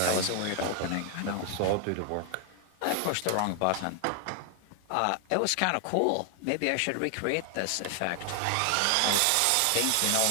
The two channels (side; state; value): both; different; correlation 0.00